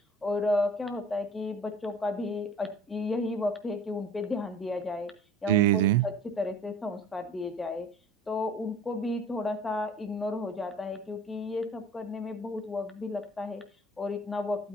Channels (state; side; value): normal; both; correlation 0.45